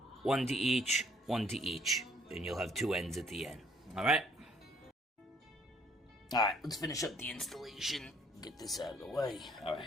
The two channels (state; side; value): normal; both; correlation 0.62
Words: one to each, and you'll have two ends at the end. Alright? Alright, let's finish up the installation. Get this out of the way. Alright.